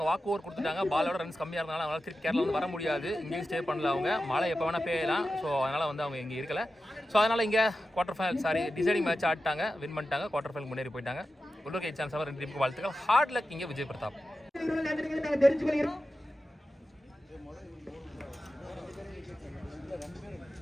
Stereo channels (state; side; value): normal; both; correlation 0.92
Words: வாக் ஓவர் கொடுத்துட்டாங்க. பாலோட ரன்ஸ் கம்மியாக இருந்தாலும் அவங்களால திருப்பி கேரளா வந்து வர முடியாது. இங்கேயும் ஸ்டே பண்ணல அவங்க. மழை எப்போ வேணால் பெய்யலாம். ஸோ அதனால் வந்து அவங்க இங்கே இருக்கல. ஸோ அதனால் இங்கே குவார்டர் ஃபைனல் டிசைடிங் மேட்ச் ஆடிட்டாங்க, வின் பண்ணிட்டாங்க, குவார்டர் ஃபைனல் முன்னேறி போயிட்டாங்க. உள்ளூர் சான்ஸ் 2 டீமுக்கு வாழ்த்துக்கள். ஹார்ட் லக் இங்கே விஜய் பிரதாப்.